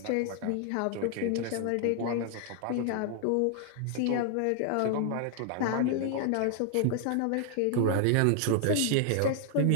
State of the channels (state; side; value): different; both; correlation 0.00